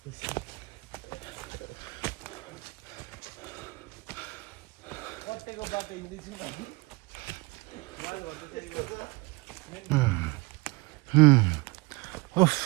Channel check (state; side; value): quieter; left; 23.6 dB